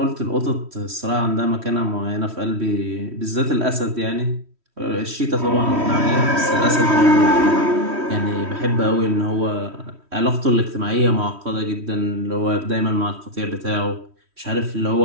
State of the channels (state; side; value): late; left; 3.1 ms